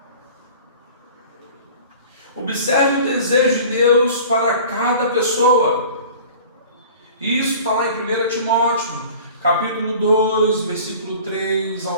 Observe o desejo de Deus para cada pessoa. Isso está lá em 1 Timóteo, capítulo 2, versículo 3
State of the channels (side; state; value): both; inverted; correlation -0.43